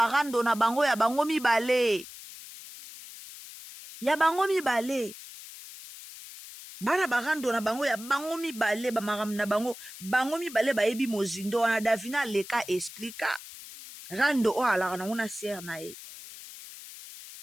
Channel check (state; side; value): noise; left; hiss, 15 dB below the sound